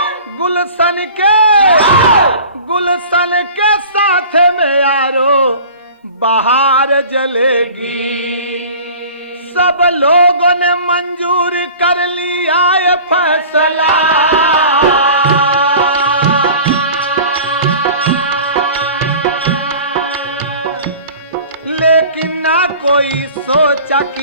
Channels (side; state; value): both; inverted; correlation -0.42